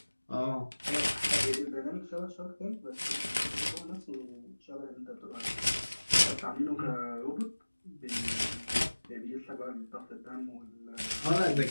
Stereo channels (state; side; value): inverted; both; correlation -1.00